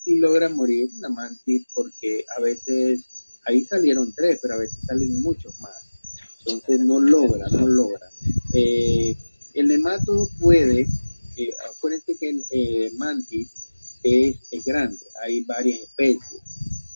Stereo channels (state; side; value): inverted; both; correlation -1.00